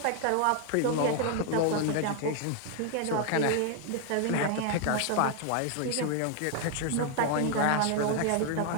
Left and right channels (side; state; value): both; different; correlation 0.00